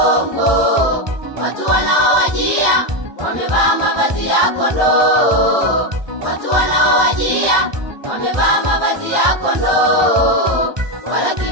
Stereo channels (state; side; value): late; left; 1.2 ms